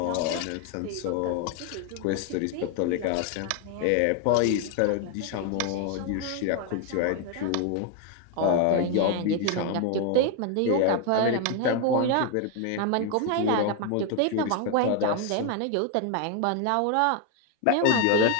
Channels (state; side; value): different; both; correlation 0.01